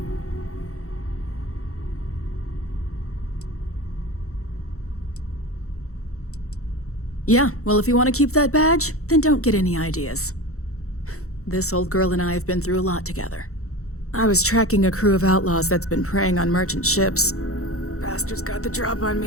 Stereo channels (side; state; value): right; late; 0.64 ms